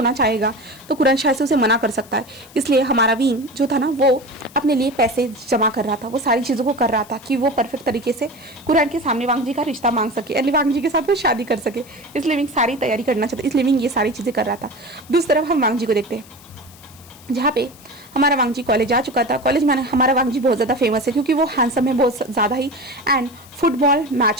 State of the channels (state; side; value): noise; left; hiss, 23 dB below the sound